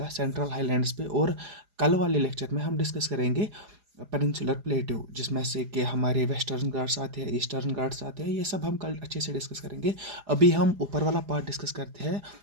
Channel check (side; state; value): left; late; 4.9 ms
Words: सेंट्रल हाईलैंड्स पे, और कल वाले लेक्चर में हम डिस्कस करेंगे पेनिनसुलर प्लेट्यू, जिसमें से कि हमारे वेस्टर्न घाट्स आते हैं, ईस्टर्न घाट्स आते हैं। ये सब हम कल अच्छे से डिस्कस करेंगे। अभी हम ऊपर वाला पार्ट डिस्कस करते हैं